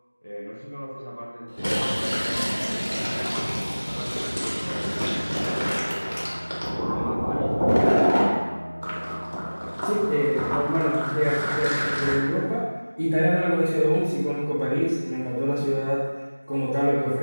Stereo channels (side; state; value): both; inverted; correlation -1.00